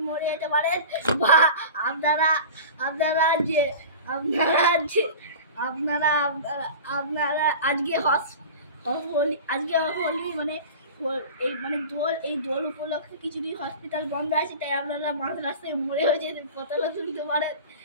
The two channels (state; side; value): inverted; both; correlation -0.35